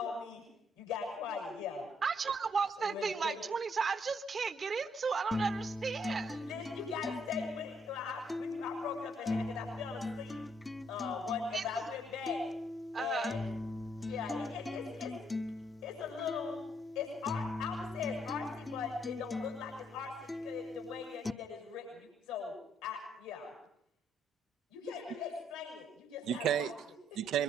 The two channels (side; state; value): both; normal; correlation 0.71